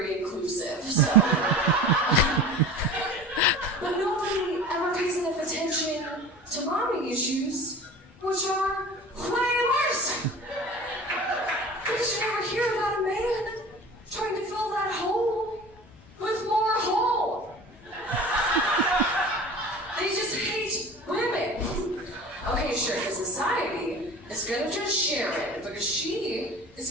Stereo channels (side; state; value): both; normal; correlation 0.38